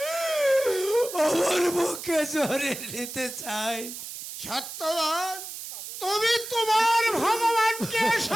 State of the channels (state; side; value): noise; right; hiss, 10 dB below the sound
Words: আমার মুখে জড়িয়ে নিতে চাই। সত্যবান, তুমি তোমার ভগবানকে